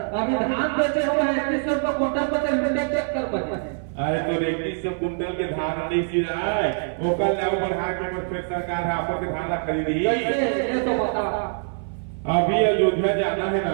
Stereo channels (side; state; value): left; silent; 58 dB below the other